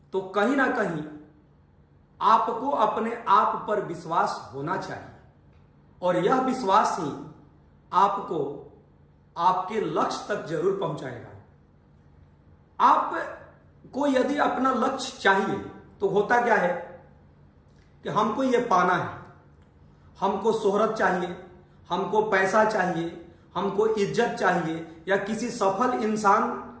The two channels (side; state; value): both; identical; correlation 1.00